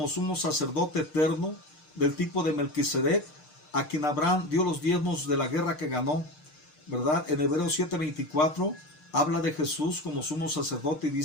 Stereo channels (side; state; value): right; late; 6.6 ms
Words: sumo sacerdote eterno del tipo de Melquisedec, a quien Abraham dio los diezmos de la guerra que ganó, ¿verdad? En Hebreos 7:24 habla de Jesús como sumo sacerdote y